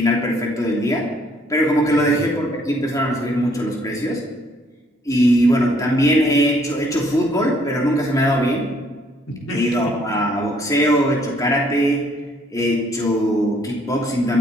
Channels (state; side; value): normal; both; correlation 0.65